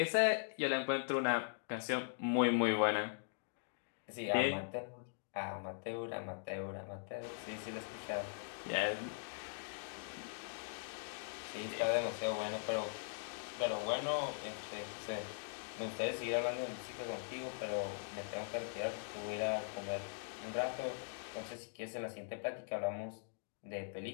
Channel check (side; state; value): right; silent; digital silence